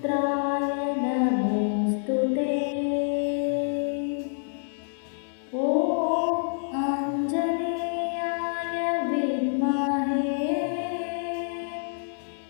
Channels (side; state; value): right; silent; 60 dB below the other